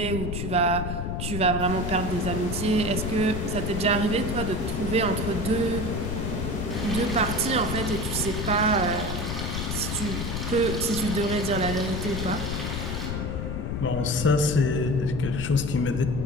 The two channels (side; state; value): left; noise; rumble, 3 dB below the sound